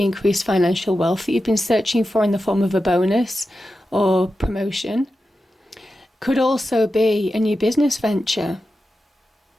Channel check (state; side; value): normal; both; correlation 0.91